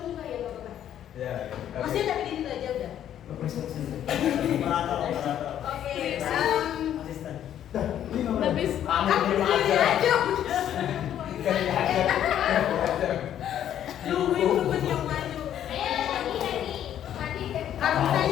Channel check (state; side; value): quieter; right; 10.6 dB